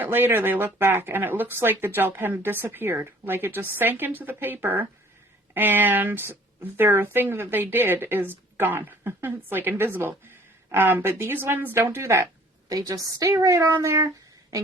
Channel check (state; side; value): normal; both; correlation 0.53